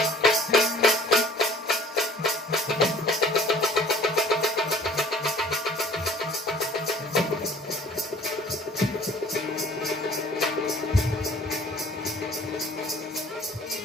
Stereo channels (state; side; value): normal; both; correlation 0.52